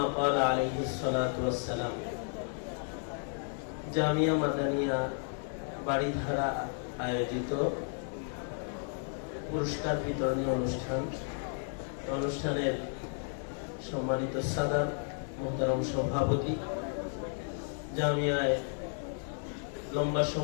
قال عليه الصلاة والسلام. জামিয়া মাদানিয়া বাড়িধারা আয়োজিত পুরস্কার বিতরণী অনুষ্ঠানের সম্মানিত সাদাত মোহতারাম সভাপতি, জামিয়ায় লম্বা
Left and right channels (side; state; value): right; silent; 56 dB below the other